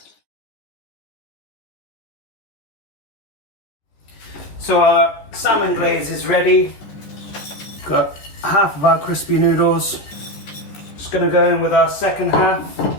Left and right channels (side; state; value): right; late; 14 ms